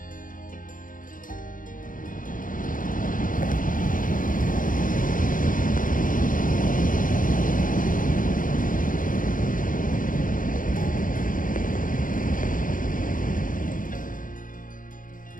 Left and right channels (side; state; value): right; late; 0.39 ms